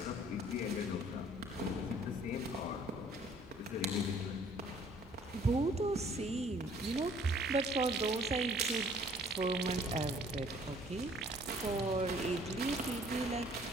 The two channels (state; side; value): normal; both; correlation 0.57